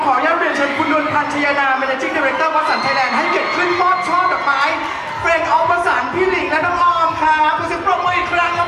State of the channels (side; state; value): both; identical; correlation 1.00